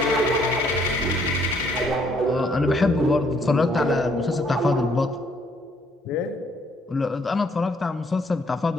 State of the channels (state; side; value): normal; both; correlation 0.67